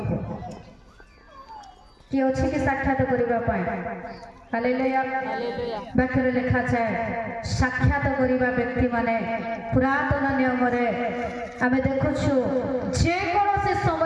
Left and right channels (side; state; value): both; identical; correlation 1.00